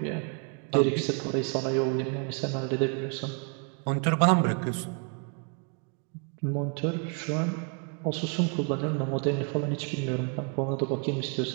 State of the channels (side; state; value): left; quieter; 36.6 dB